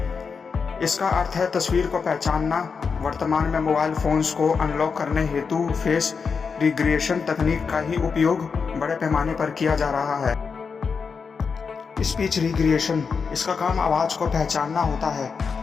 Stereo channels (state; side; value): quieter; right; 5.5 dB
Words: इसका अर्थ है तस्वीर को पहचानना। वर्तमान में मोबाइल फोन्स को अनलॉक करने हेतु फेस रिक्रिएशन तकनीक का ही उपयोग बड़े पैमाने पर किया जा रहा है। स्पीच रिक्रिएशन, इसका काम आवाज़ को पहचानना होता है।